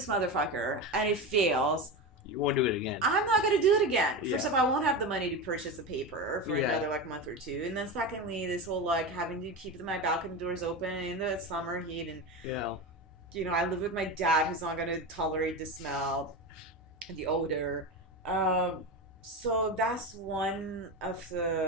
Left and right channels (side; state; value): both; normal; correlation 0.21